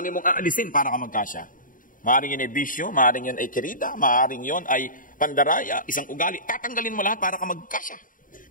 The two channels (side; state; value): right; late; 0.39 ms